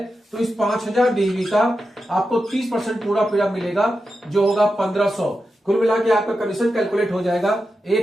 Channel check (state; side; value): normal; both; correlation 0.90